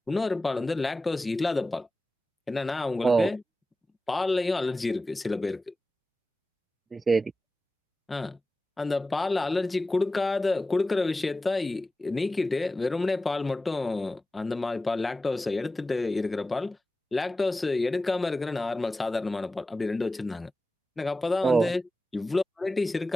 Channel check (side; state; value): both; normal; correlation 0.95